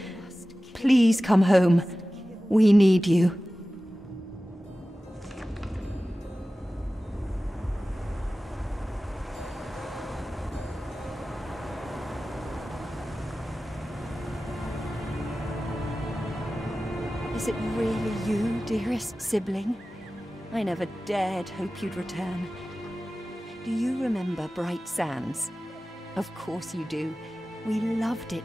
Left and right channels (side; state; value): both; normal; correlation 0.96